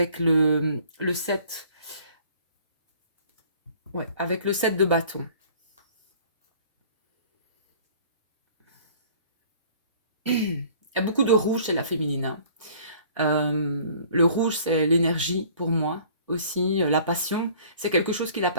le 7. Ouais, avec le 7 de bâton. Il y a beaucoup de rouge chez la féminine, hein. Le rouge, c'est l'énergie pour moi aussi, la passion. C'est quelque chose qui la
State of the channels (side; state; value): both; inverted; correlation -0.52